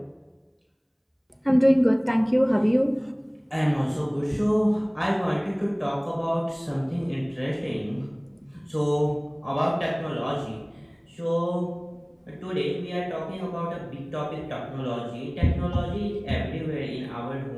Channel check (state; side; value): identical; both; correlation 1.00